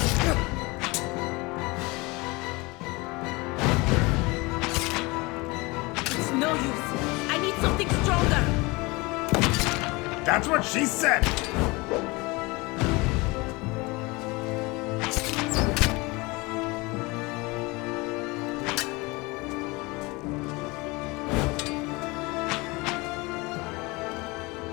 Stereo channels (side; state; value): right; quieter; 24.6 dB